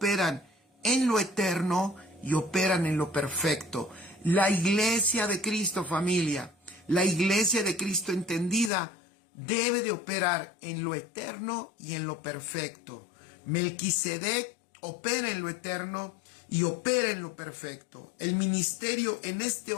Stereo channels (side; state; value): right; drops out; at 8.7 s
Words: en lo eterno y operan en lo perfecto. La iglesia de Cristo, familia, la iglesia de Cristo entendida, debe de operar en lo eterno y en lo perfecto. Melquisedec opera en lo eterno y opera en lo perfecto. El ministerio en este